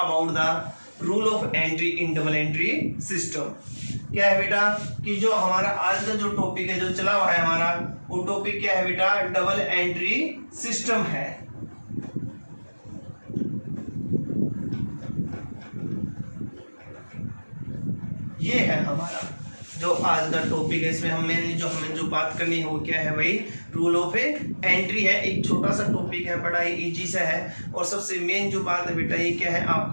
the rule of entry in double entry system. क्या है बेटा कि जो हमारा आज का जो टॉपिक है जो चला हुआ है हमारा वो टॉपिक क्या है बेटा डबल एंट्री सिस्टम है। ये है हमारा जो आज का टॉपिक है। इसमें हमें जो बात करनी है वो क्या है भाई रूल ऑफ एंट्री है। एक छोटा सा टॉपिक है, बड़ा ही इजी सा है और सबसे मेन जो बात है बेटा ये क्या है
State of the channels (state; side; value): inverted; both; correlation -1.00